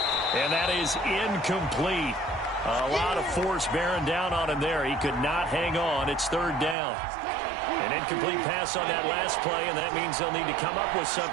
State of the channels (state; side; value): drops out; left; at 6.8 s